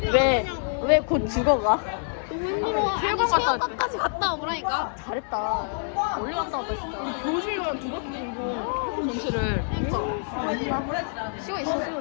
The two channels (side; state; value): right; silent; digital silence